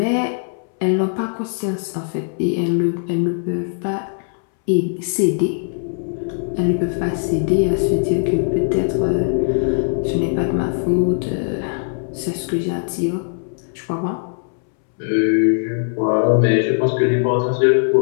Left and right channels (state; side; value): silent; right; 66 dB below the other